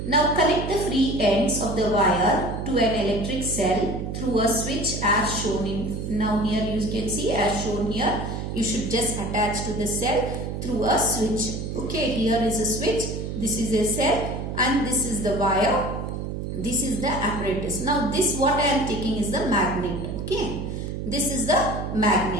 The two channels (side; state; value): right; noise; hum, 5 dB below the sound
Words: Now connect the free ends of the wire to an electric cell through a switch as shown in. Now here you can see as shown here. You should just attach to the cell through a switch. Okay, here is a switch. This is a cell and this is the wire. This is the apparatus. Now this what I am taking is the magnet. Okay, this is the